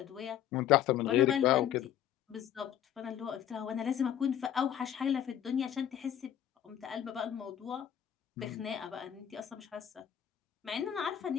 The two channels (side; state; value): right; quieter; 10.4 dB